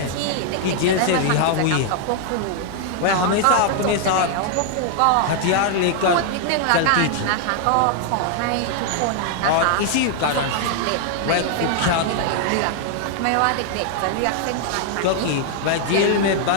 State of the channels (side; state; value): both; different; correlation 0.00